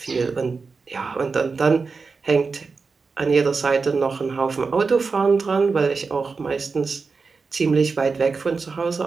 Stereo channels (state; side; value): quieter; left; 4.6 dB